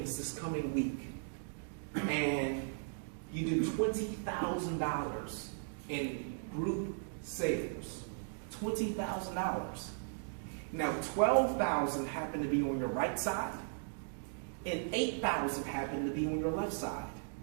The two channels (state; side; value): silent; left; digital silence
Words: this coming week, and you do $20,000 in group sales. $20,000. Now, $12,000 happen to be on your right side, and $8,000 happen to be on your left side.